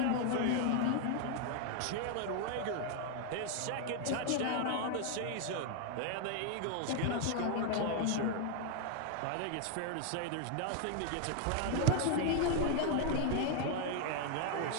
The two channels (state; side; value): different; both; correlation 0.00